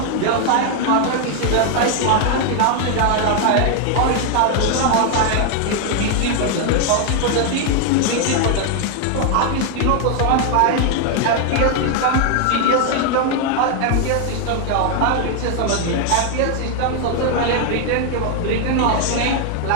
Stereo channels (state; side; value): different; both; correlation 0.01